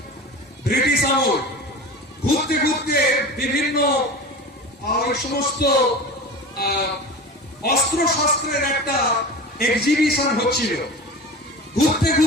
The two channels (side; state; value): both; normal; correlation 0.33